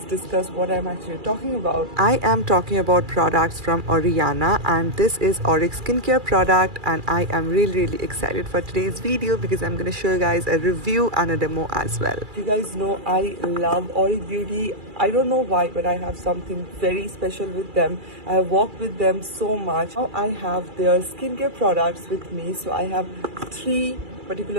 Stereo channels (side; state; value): left; late; 2.4 ms